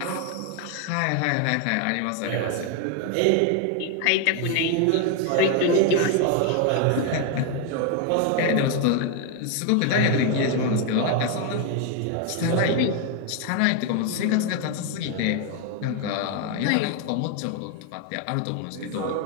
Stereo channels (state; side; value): different; both; correlation 0.01